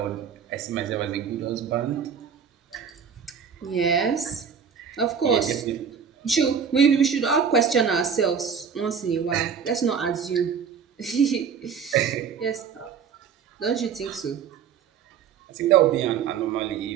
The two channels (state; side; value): quieter; left; 7.0 dB